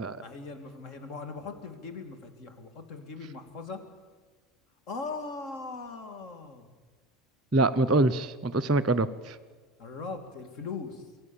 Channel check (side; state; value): both; normal; correlation 0.34